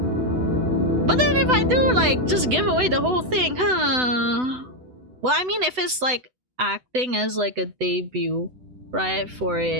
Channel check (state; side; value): late; left; 8.0 ms